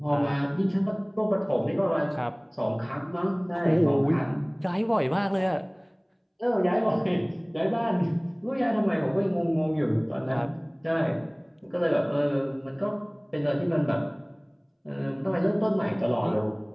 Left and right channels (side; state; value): both; identical; correlation 1.00